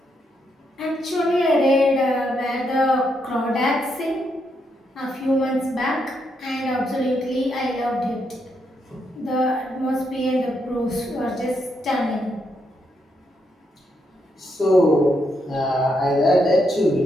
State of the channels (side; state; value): both; normal; correlation 0.79